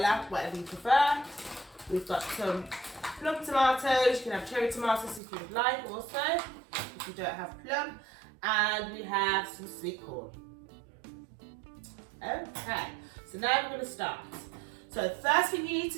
whatever you prefer. We've got some plum tomatoes. You can have cherry tomatoes if you would like also, if you don't have plum. And we have some sweet corn. Okay, so now we're going to start. So the first thing you need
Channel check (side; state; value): left; drops out; at 5.2 s